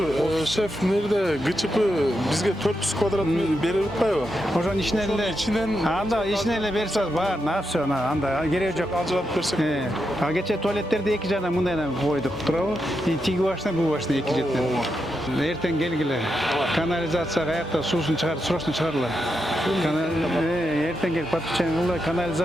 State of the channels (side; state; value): both; normal; correlation 0.85